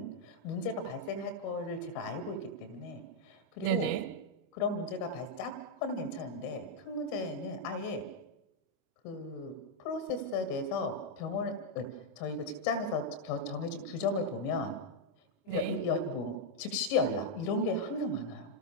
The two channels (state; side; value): late; right; 25 ms